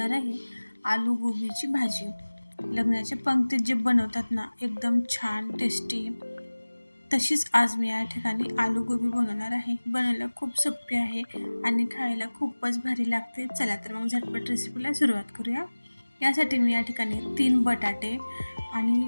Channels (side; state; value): both; inverted; correlation -1.00